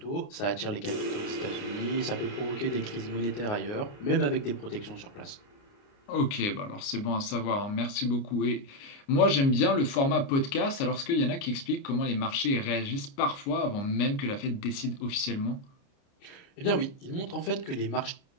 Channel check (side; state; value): right; late; 29 ms